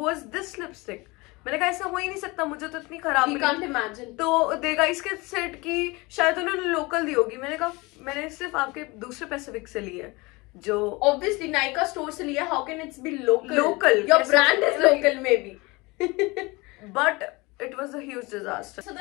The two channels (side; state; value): right; quieter; 24.3 dB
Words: this lipstick. मैंने कहा ऐसा हो ही नहीं सकता, मुझे तो इतनी खराब We मिली. can't imagine. तो देगा इसके सेट की शायद उन्होंने लोकल दी होगी. मैंने कहा मैंने सिर्फ आपके दूसरे पैसिफिक से ली है जो Obviously, Nykaa store से लिया. How can it be local? Local. Your Yes, brand yes, is like- local, maybe. but it was a huge disaster. So